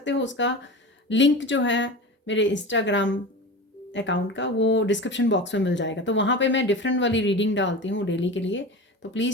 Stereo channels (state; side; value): normal; both; correlation 0.30